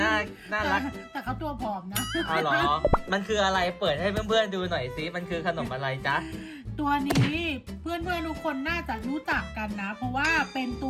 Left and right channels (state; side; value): identical; both; correlation 1.00